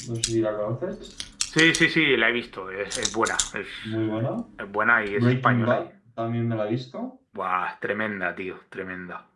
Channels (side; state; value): both; identical; correlation 1.00